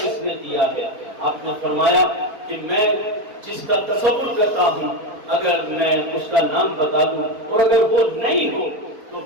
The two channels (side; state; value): left; late; 4.3 ms